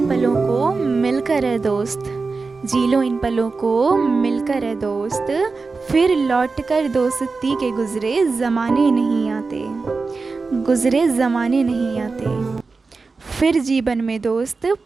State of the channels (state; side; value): quieter; left; 4.2 dB